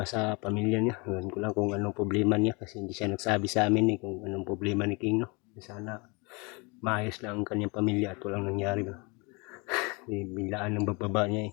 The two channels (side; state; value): right; quieter; 29.2 dB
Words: sa pamilya niya. Ewan ko lang kung anong problema niya kasi hindi siya nagsabi sa amin kung anong problema ni King, no. Sana maayos lang ang kanyang pamilya at walang nangyari ba. Biglaan ng pagbaba niya